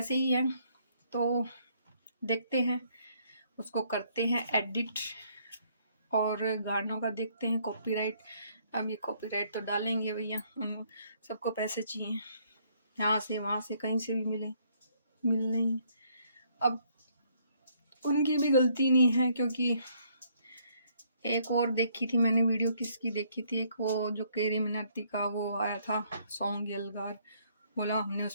ही है। तो देखते हैं, उसको करते हैं एडिट, और गानों का देखते हैं कॉपीराइट। अब ये कॉपीराइट तो डालेंगे भैया, सबको पैसे चाहिए, यहाँ से वहाँ से कहीं से भी मिल नहीं। अब उनकी भी गलती नहीं है, क्योंकि एक और देखी थी मैंने वीडियो, किसकी देखी थी, एक वो जो केरी मिनाटी का वो आया था सॉन्ग यलगार, बोला हमने उस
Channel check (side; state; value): both; inverted; correlation -0.67